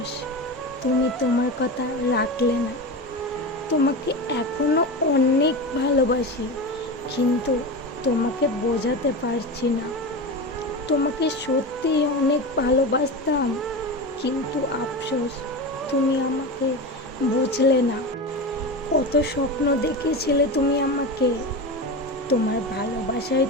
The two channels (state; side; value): normal; both; correlation 0.23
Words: তুমি তোমার কথা রাখলে না। তোমাকে এখনো অনেক ভালোবাসি, কিন্তু তোমাকে বোঝাতে পারছি না। তোমাকে সত্যিই অনেক ভালোবাসতাম, কিন্তু আফসোস তুমি আমাকে বুঝলে না। কত স্বপ্ন দেখেছিলে তুমি আমাকে। তোমার ভালোবাসাই